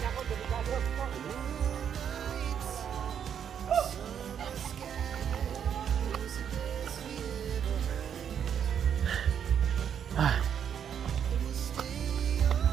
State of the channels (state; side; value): quieter; left; 8.4 dB